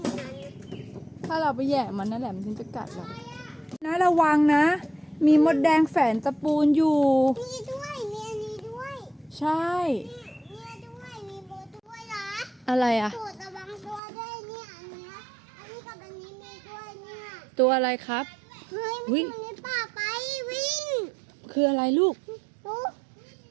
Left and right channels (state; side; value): drops out; left; at 14.0 s